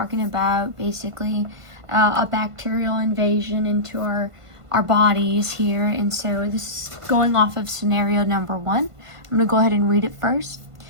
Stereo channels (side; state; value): left; late; 1.5 ms